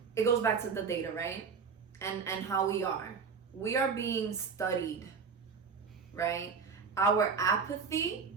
it goes back to the data, right? And how we are being studied, right? Our apathy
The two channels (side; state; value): left; quieter; 5.7 dB